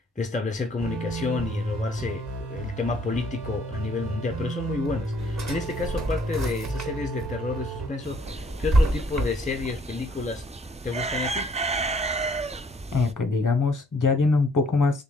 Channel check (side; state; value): both; normal; correlation 0.63